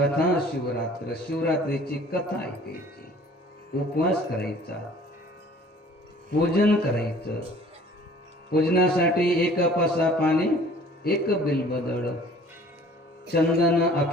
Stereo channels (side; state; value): both; normal; correlation 0.51